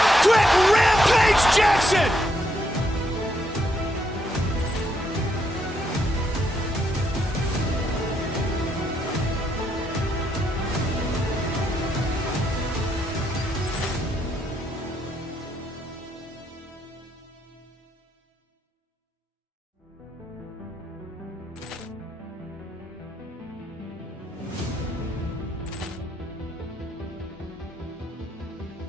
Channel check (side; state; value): both; normal; correlation 0.76